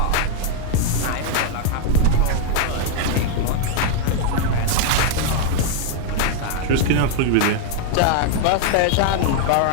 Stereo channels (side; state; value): both; different; correlation 0.01